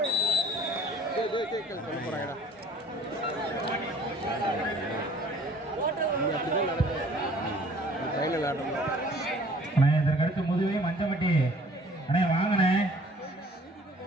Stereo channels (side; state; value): both; normal; correlation 0.53